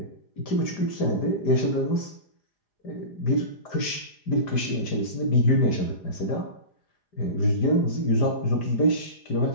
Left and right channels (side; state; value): right; late; 5.0 ms